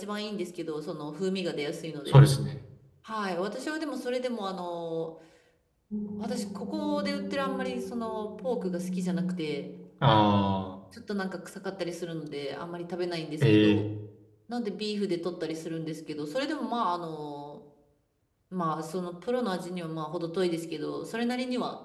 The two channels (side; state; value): both; identical; correlation 1.00